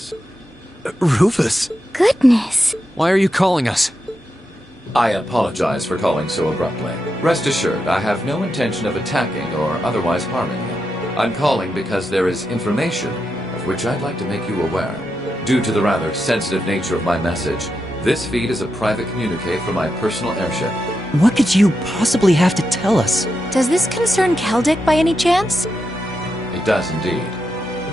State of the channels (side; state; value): both; normal; correlation 0.86